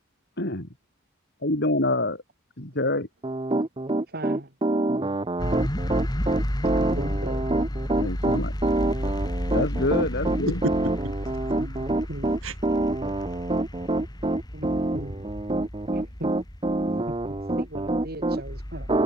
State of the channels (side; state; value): both; normal; correlation 0.58